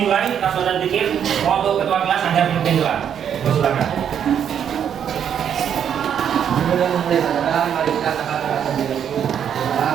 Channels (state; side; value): quieter; left; 8.7 dB